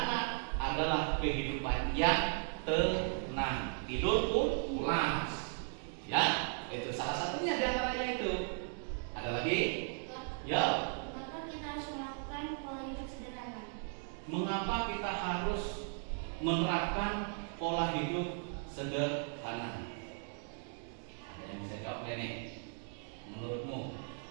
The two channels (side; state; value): left; silent; 53 dB below the other